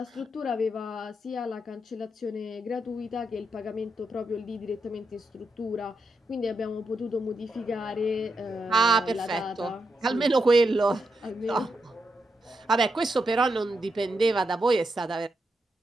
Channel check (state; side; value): normal; both; correlation 0.83